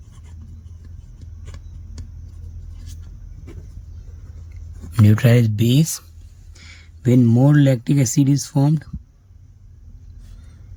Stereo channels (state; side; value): identical; both; correlation 1.00